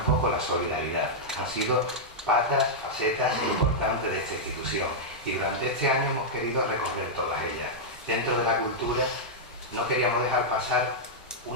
la solidaridad. Han sido patas, facetas importantes de esta institución y durante este año hemos querido recorrer todas ellas. Dentro de la cultura no queríamos dejar pasar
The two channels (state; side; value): normal; both; correlation -0.07